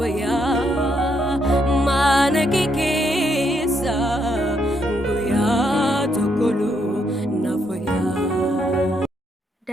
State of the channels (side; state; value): both; normal; correlation 0.76